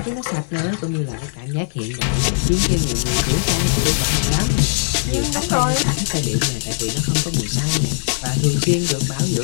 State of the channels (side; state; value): right; silent; 59 dB below the other